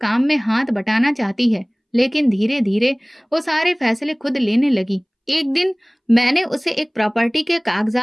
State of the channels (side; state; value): both; identical; correlation 1.00